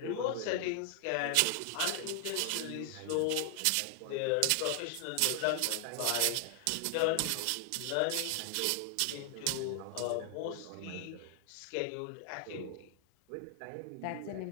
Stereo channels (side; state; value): both; different; correlation 0.00